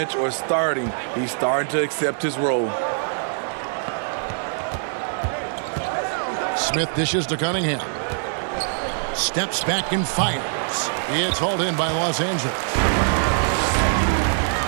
or starting, he's starting to accept his role. Smith dishes to Cunningham. Steps back and fires. It's hauled in by Los Angeles.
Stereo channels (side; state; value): left; silent; digital silence